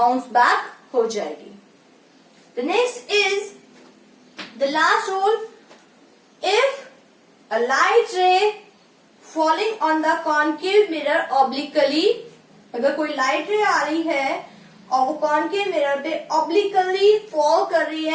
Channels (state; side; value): identical; both; correlation 1.00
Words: बैक हो जाएगी. The next is the last rule. If a light ray falling on the concave mirror obliquely, अगर कोई लाइट रे आ रही है और वो कॉनकेव मिरर पे ऑब्लिकली फॉल कर रही